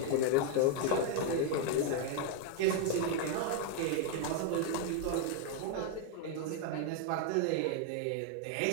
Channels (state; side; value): different; both; correlation 0.00